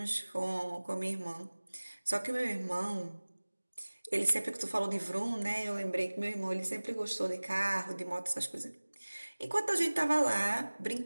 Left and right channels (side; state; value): both; inverted; correlation -1.00